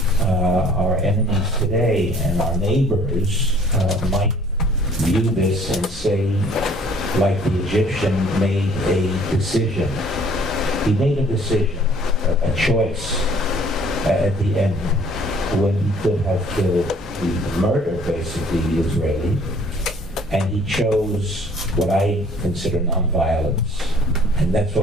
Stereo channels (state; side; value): normal; both; correlation 0.56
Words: our enemies today and our neighbors might view this and say, like the Egyptian made a decision. He made a decision, a choice at the end, when he could have killed, murdered basically the Israeli, and he chose what I consider nonviolence, and that's